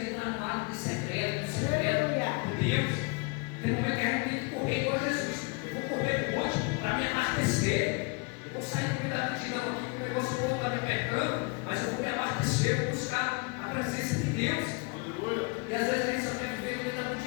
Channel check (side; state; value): right; quieter; 30.2 dB